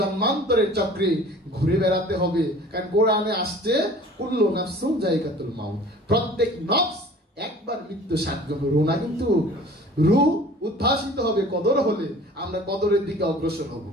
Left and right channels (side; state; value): both; normal; correlation 0.46